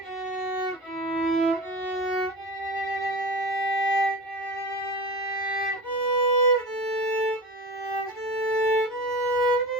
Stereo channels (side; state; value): both; normal; correlation 0.30